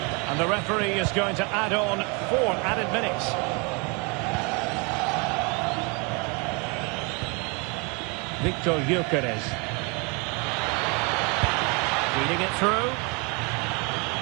And the referee is going to add on 4 added minutes. Victor Gyökeres. Reading it through.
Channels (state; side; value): quieter; left; 30.8 dB